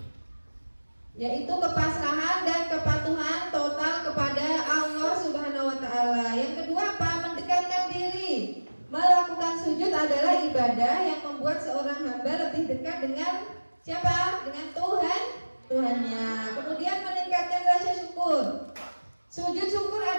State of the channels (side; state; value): both; inverted; correlation -1.00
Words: yaitu kepasrahan dan kepatuhan total kepada Allah Subhanahu wa Ta'ala. Yang kedua apa? Mendekatkan diri. Melakukan sujud adalah ibadah yang membuat seorang hamba lebih dekat dengan siapa? Dengan Tuhannya. Kemudian meningkatkan rasa syukur. Sujud syukur